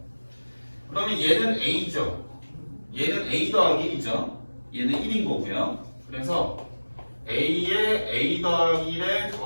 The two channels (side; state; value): both; inverted; correlation -1.00